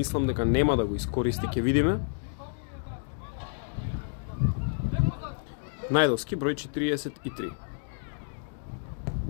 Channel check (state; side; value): silent; right; digital silence